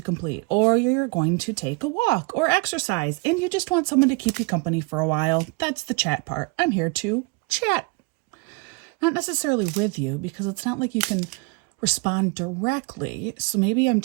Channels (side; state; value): left; quieter; 28.3 dB